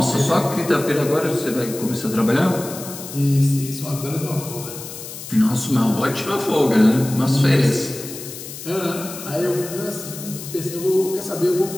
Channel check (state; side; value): noise; left; hiss, 11 dB below the sound